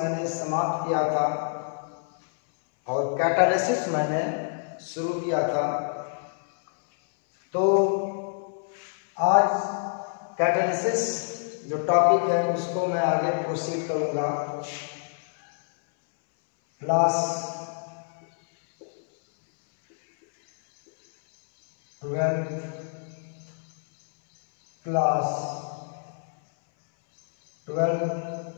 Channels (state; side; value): silent; right; 61 dB below the other